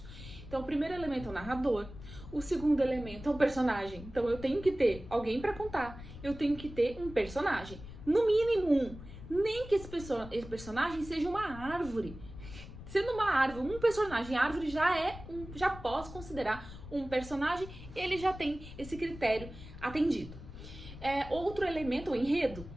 Então, o primeiro elemento é o narrador, o segundo elemento é o personagem. Então, eu tenho que ter alguém para contar, eu tenho que ter um personagem, no mínimo um, nem que esse personagem seja uma árvore. Sendo uma árvore, um personagem, árvore já posso considerar um personagem, ele já tem esse critério atendido. Outro elemento, o enredo.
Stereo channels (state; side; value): noise; left; rumble, 14 dB below the sound